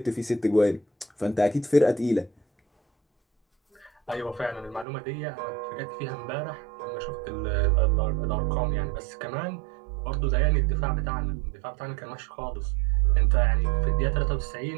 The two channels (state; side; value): drops out; left; at 4.9 s